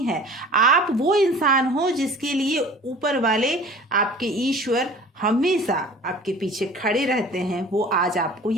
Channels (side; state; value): both; normal; correlation 0.44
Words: है। आप वो इंसान हो जिसके लिए ऊपर वाले आपके ईश्वर हमेशा आपके पीछे खड़े रहते हैं, वो आज आपको